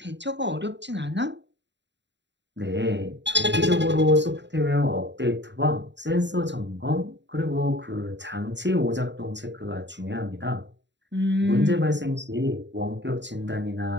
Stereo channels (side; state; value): left; late; 0.52 ms